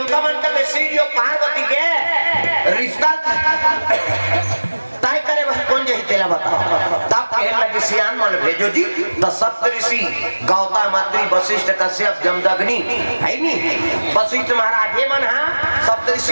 मन के शिव और पार्वती के रिश्ता तय करे वह कौन जही तेला बताओ। तब कहने लगे सियान मन भेजो जी। तो सप्त ऋषि गौतम अत्रि वशिष्ठ कश्यप जमदग्नि है नी वशिष्ठ महाराज ये मन हाँ सप्त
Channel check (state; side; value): inverted; both; correlation -1.00